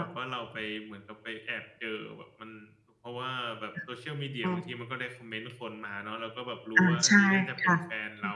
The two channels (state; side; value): identical; both; correlation 1.00